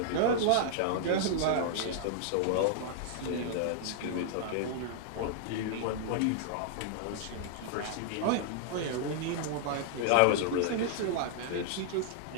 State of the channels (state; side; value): different; both; correlation -0.01